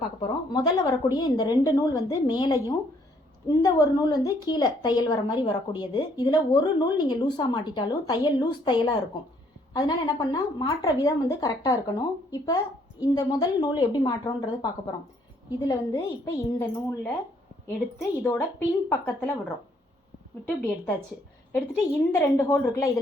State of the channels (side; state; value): both; normal; correlation 0.67